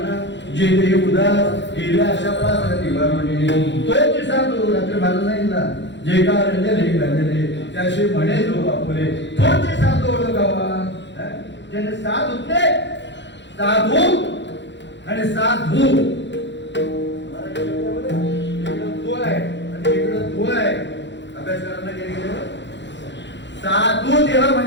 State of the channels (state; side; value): late; right; 0.52 ms